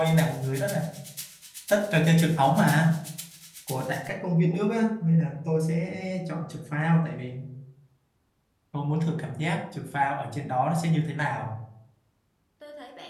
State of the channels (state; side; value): identical; both; correlation 1.00